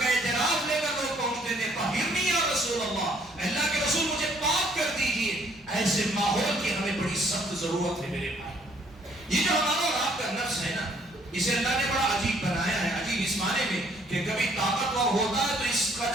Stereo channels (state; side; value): normal; both; correlation 0.63